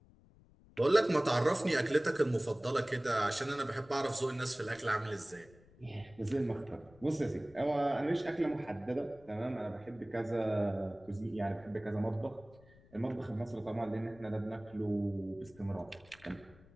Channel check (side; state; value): left; noise; rumble, 25 dB below the sound